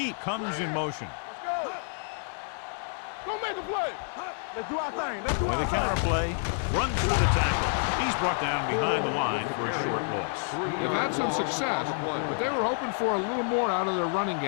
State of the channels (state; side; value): silent; right; 59 dB below the other